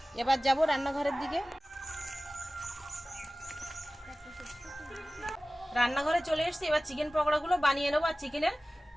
এবার যাব রান্নাঘরের দিকে। রান্নাঘরে চলে এসেছি। এবার চিকেন পকোড়াগুলো বানিয়ে নেবো। আর চিকেনের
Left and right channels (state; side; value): normal; both; correlation 0.97